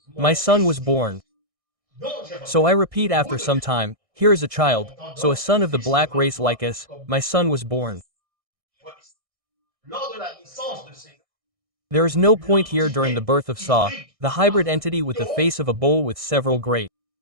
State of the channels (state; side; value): late; left; 1.6 ms